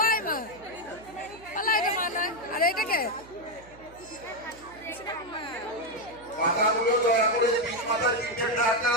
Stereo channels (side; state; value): right; noise; hum, 23 dB below the sound